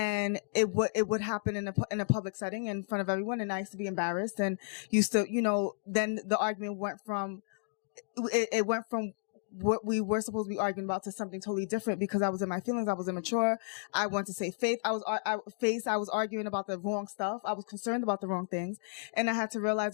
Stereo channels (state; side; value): silent; right; digital silence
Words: it would happen in a public setting in front of everyone, and I used to be embarrassed, and used to, then the argument went from what we were supposed to be arguing about to something totally different, because I was in my feelings. I was immature. I wanted to say faith. I was arguing about the wrong stuff. I was concerned about the wrong things. And I had to